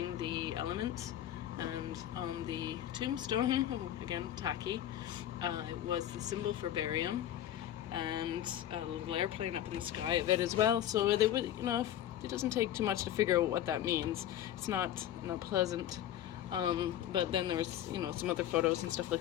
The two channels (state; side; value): quieter; right; 11.8 dB